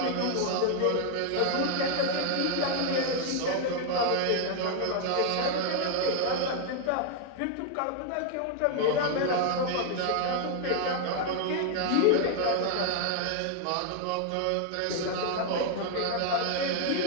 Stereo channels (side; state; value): both; different; correlation 0.00